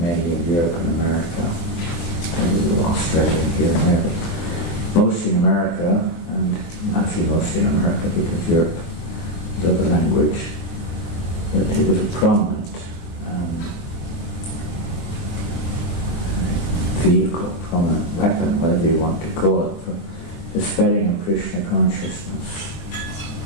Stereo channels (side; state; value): right; late; 24 ms